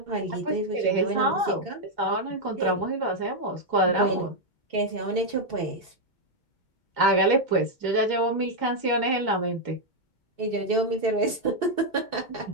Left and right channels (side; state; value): right; late; 2.2 ms